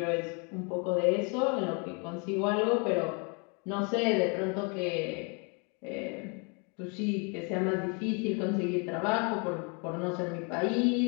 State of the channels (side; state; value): right; quieter; 34.4 dB